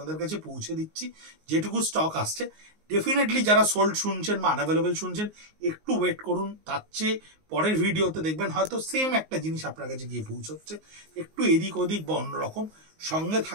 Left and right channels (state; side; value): late; left; 19 ms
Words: কাছে পৌঁছে দিচ্ছি যেটুকু স্টক আসছে। ডেফিনেটলি যারা সোল্ড শুনছেন বা আনঅ্যাভেলেবেল শুনছেন, একটু ওয়েট করুন, তার চেয়ে পরের ভিডিওতে দেখবেন হয়তো সেম একটা জিনিস আপনার কাছে গিয়ে পৌঁছচ্ছে, একটু এদিক ওদিক বা অন্যরকম। সঙ্গে